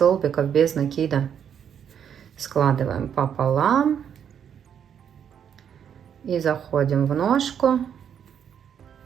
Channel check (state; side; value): quieter; left; 8.4 dB